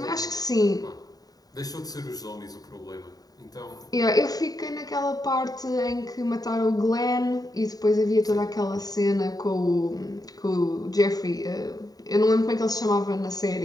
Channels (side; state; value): right; late; 0.18 ms